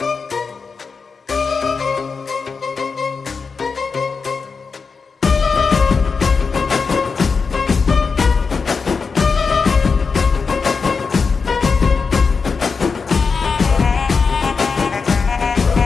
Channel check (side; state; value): right; quieter; 5.0 dB